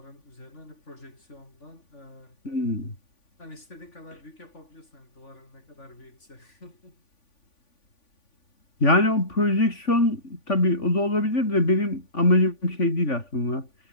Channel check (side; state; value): right; late; 3.5 ms